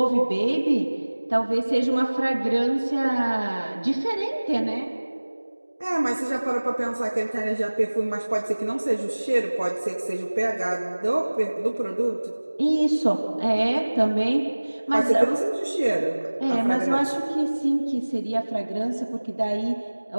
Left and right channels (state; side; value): inverted; both; correlation -1.00